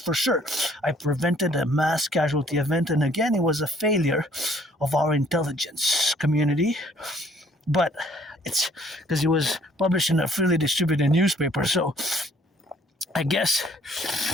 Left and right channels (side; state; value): both; normal; correlation 0.61